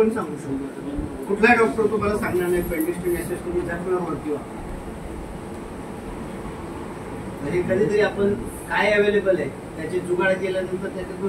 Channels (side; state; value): both; identical; correlation 1.00